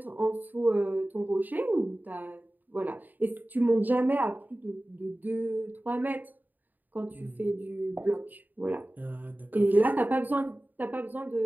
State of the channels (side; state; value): left; late; 0.086 ms